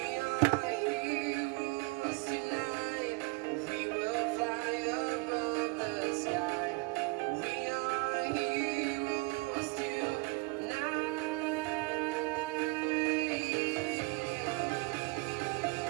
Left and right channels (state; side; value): quieter; left; 26.7 dB